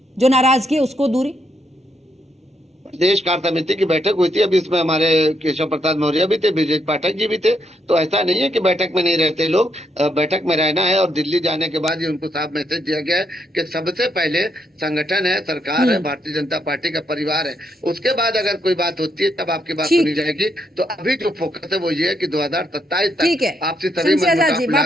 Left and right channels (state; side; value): normal; both; correlation 0.77